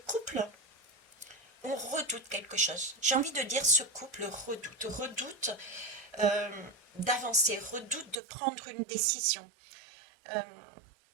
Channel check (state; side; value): drops out; left; at 8.2 s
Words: couple, on redoute quelque chose. J'ai envie de dire ce couple redoute euh, d'avancer, redoute de prendre une décision. Euh,